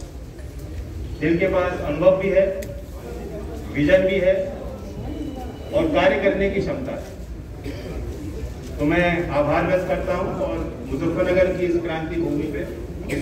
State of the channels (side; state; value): both; identical; correlation 1.00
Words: जिनके पास अनुभव भी है, विजन भी है और कार्य करने की क्षमता है। तो मैं आभार व्यक्त करता हूं और मुजफ्फरनगर की इस क्रांति भूमि पे,